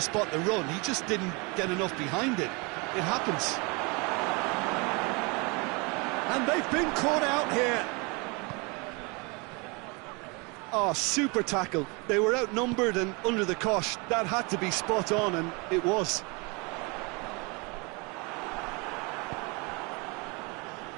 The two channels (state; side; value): quieter; left; 29.3 dB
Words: spot the run. He just didn't get enough behind it. It happens. And they've been caught out here. Oh, super tackle. They were outnumbered and under the cosh. That had to be spot on, and it was.